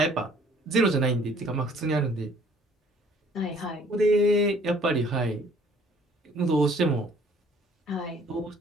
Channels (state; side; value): normal; both; correlation 0.57